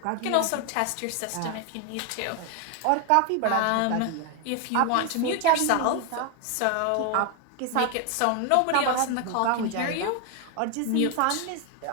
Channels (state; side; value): different; both; correlation 0.01